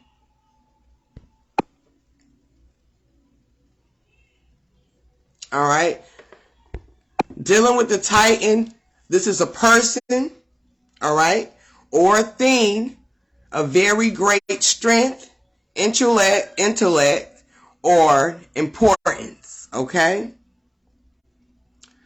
All right. Dealing with the Titan, this is a person, all right, or a thing of very great strength, intellect, or importance, okay?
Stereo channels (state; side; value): identical; both; correlation 1.00